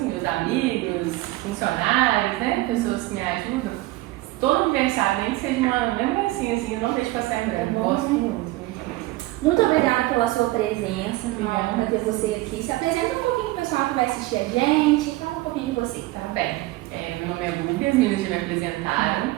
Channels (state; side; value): quieter; left; 18.8 dB